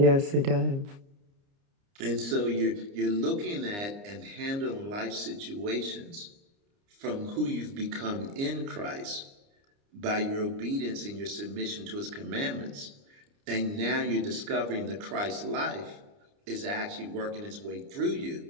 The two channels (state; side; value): late; left; 29 ms